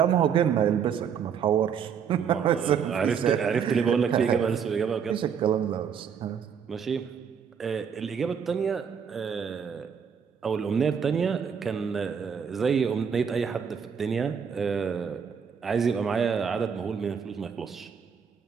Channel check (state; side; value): quieter; left; 7.2 dB